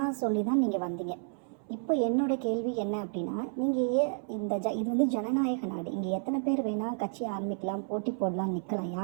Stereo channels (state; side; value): silent; left; 57 dB below the other